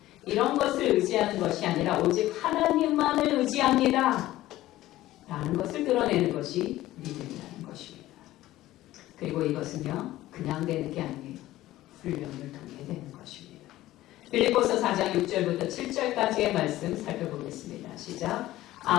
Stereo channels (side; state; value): right; quieter; 15.6 dB